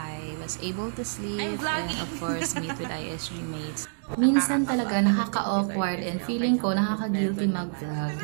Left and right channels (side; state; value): left; silent; 60 dB below the other